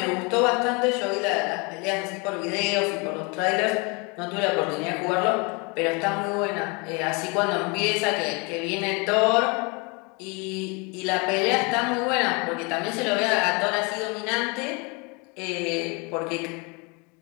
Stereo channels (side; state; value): right; quieter; 30.4 dB